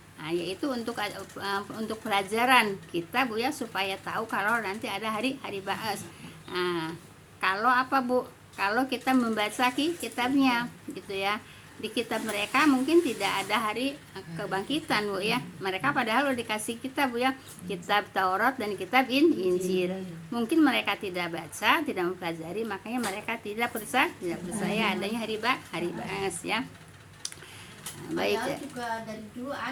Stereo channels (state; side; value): identical; both; correlation 1.00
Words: Yaitu untuk pelajaran kita Bu ya, supaya tahu kalau nanti ada hari ba'as. Kalau apa Bu? Kalau kita membaca kitabnya gitu ya, di kitab mereka mungkin tidak ada hari kebangkitan Bu ya. Mereka padahal udah dikasih kitab Bu ya, kitab Taurat dan kitab Injil. Mungkin mereka tidak baca, tidak mempelajari, makanya mereka tidak percaya adanya hari ba'as ya. Baik ya. Juga dari dulu